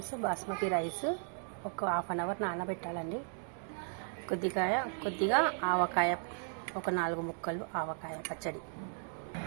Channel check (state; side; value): silent; left; 54 dB below the other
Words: basmati rice ఒక హాఫ్ అన్ అవర్ నానబెట్టాలండి. కొద్దిగా ఆవకాయ, ఒక 4 ముక్కలు ఆవకాయ పచ్చడి.